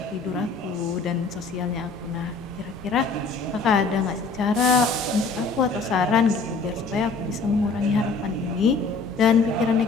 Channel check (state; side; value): quieter; right; 4.1 dB